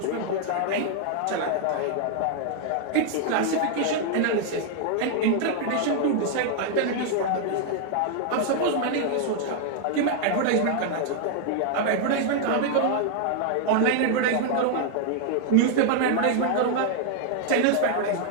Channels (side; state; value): both; different; correlation -0.01